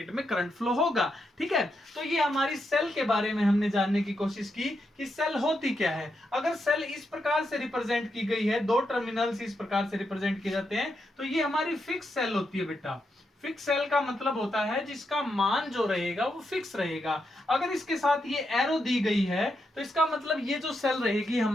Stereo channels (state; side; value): normal; both; correlation 0.83